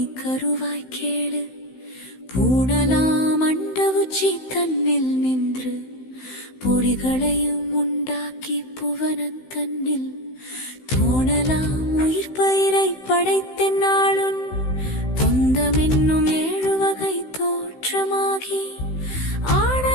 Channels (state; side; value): late; right; 16 ms